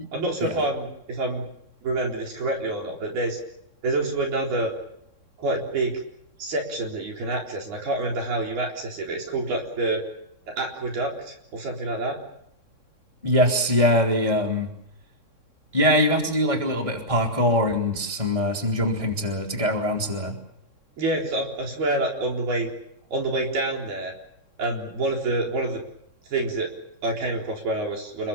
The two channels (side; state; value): left; late; 3.6 ms